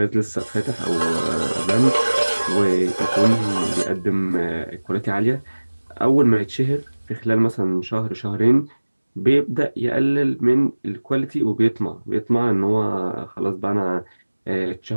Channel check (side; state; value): both; inverted; correlation -1.00